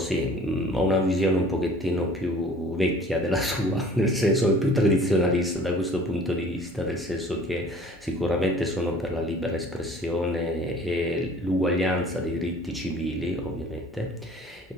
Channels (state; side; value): normal; both; correlation 0.49